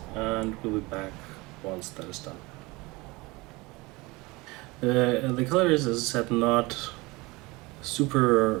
and we'll be back once that is done. The color is, as I said, not super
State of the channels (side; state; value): left; quieter; 23.4 dB